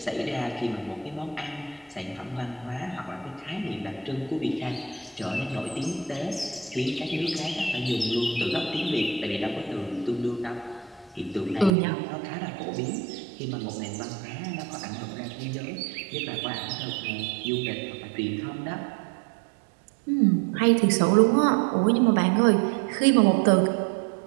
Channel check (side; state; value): left; drops out; at 11.7 s